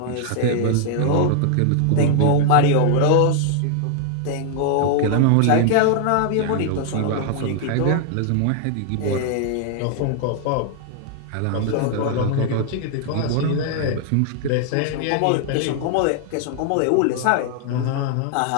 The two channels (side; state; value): both; different; correlation 0.00